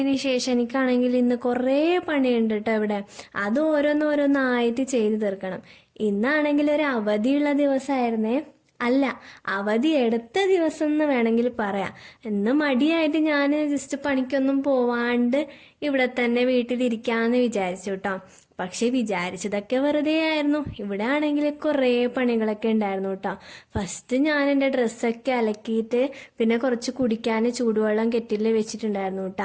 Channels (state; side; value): identical; both; correlation 1.00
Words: ശേഷം എനിക്കാണെങ്കിൽ ഇന്ന് കുറേ പണിയുണ്ട് കേട്ടോ ഇവിടെ. അത് ഓരോന്നോരോന്നായിട്ട് ചെയ്തു തീർക്കണം. ഇന്നാണെങ്കിൽ ഒരു അവധിയുള്ള ദിവസമായിരുന്നേ. അല്ല, അവധി എടുത്ത ദിവസം എന്ന് വേണമെങ്കിൽ പറയാം. ഇന്ന് മടിയായിട്ട് ഞാൻ ജസ്റ്റ് പണിക്കൊന്നും പോവാണ്ട് ഇവിടെ തന്നെ വീട്ടിലിരിക്കാന്ന് വിചാരിച്ചു കേട്ടോ. പക്ഷെ വിചാരിച്ചതൊക്കെ വെറുതെ ആയിരുന്നു. ഇവിടെ ആണെങ്കിൽ കുറേ പണികളൊക്കെ ഉണ്ടായിരുന്നു കേട്ടോ. ഫസ്റ്റ് ഞാൻ എൻ്റെ ഡ്രസ്സൊക്കെ അലക്കിയിട്ട് പിന്നെ കുറച്ച് കുടിക്കാൻ ചൂടുവെള്ളം കെറ്റിൽ വെച്ചിട്ടുണ്ടായിരുന്നു